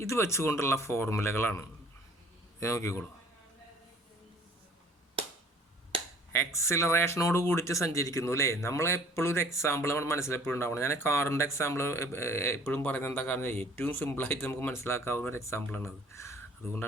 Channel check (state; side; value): normal; both; correlation 0.53